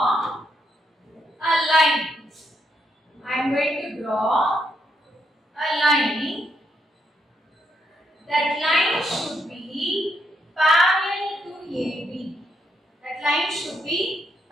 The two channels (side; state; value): both; normal; correlation 0.77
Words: a line. I am going to draw a line. That line should be parallel to AB. That line should be